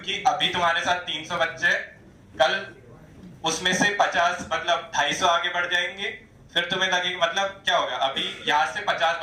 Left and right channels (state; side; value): identical; both; correlation 1.00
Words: अभी तुम्हारे साथ 300 बच्चे, कल उसमें से 50 मतलब 250 आगे बढ़ जाएंगे। फिर तुम्हें लगेगा मतलब क्या होगा, अभी यहाँ से 50